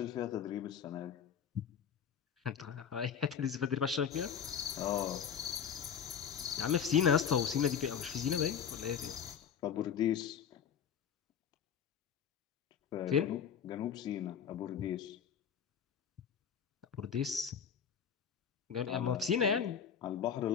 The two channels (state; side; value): quieter; right; 7.8 dB